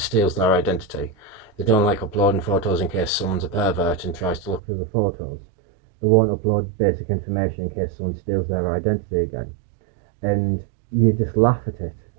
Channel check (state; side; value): drops out; left; at 4.6 s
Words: their identity. They don't like uploading photos in case someone's a pervert and tries to look through the photos. They won't upload basic information in case someone steals their identity again. And you just laugh at it.